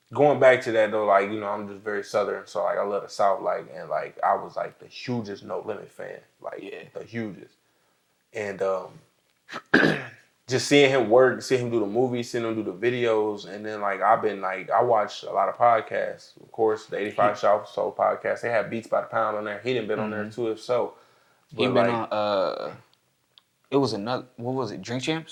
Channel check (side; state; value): both; identical; correlation 1.00